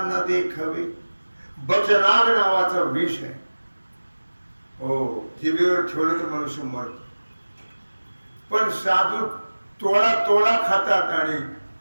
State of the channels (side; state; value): both; inverted; correlation -1.00